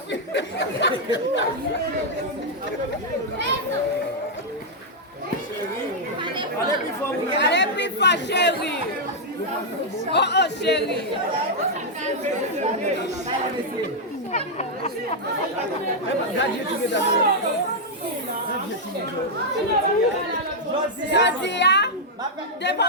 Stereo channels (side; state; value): both; normal; correlation -0.03